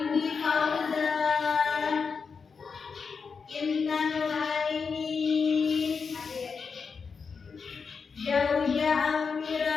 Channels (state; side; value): quieter; right; 5.4 dB